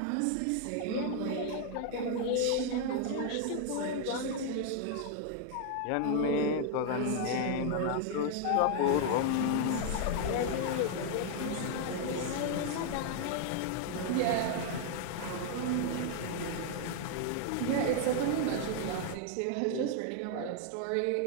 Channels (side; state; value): both; different; correlation 0.00